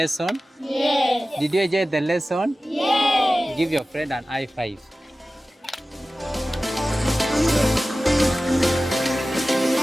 Yes. Did you enjoy the lesson? Yes. Give your friend an high five.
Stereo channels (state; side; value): normal; both; correlation 0.96